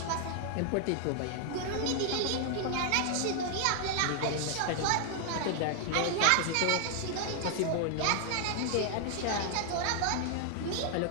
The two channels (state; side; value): different; both; correlation 0.00